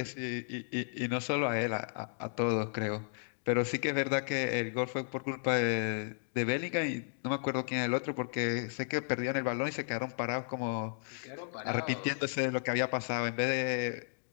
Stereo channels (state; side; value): silent; right; digital silence